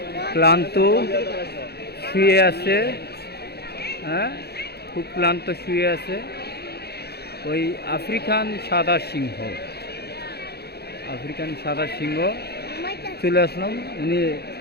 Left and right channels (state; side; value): late; right; 0.47 ms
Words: ক্লান্ত শুয়ে আছে, হ্যাঁ খুব ক্লান্ত শুয়ে আছে। ওই আফ্রিকান সাদা সিংহ, আফ্রিকান সাদা সিংহ চলে আসলাম। উনি